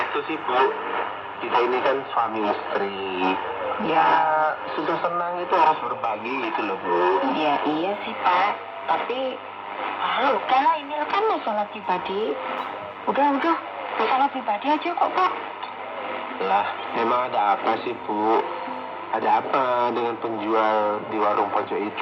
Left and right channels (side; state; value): both; identical; correlation 1.00